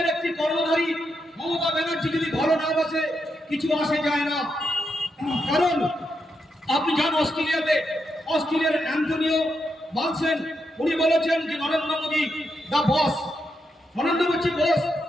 একটি কর্মধারী মমতা ব্যানার্জি যদি ভালো না বাসে, কিছু আসে যায় না। কারণ আপনি যান অস্ট্রেলিয়ার অ্যান্টনিও বালসেন, উনি বলেছেন যে নরেন্দ্র মোদী দা বস, নরেন্দ্র মোদী বস,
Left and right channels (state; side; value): normal; both; correlation 0.83